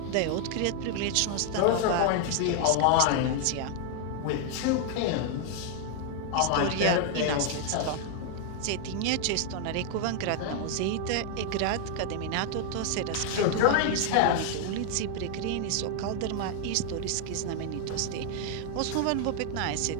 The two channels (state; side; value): different; both; correlation 0.00